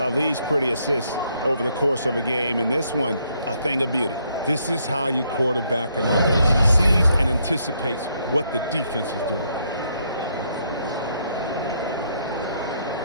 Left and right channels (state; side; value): inverted; both; correlation -0.72